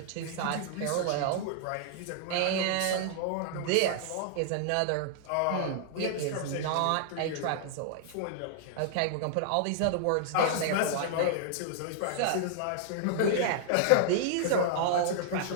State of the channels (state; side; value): different; both; correlation -0.01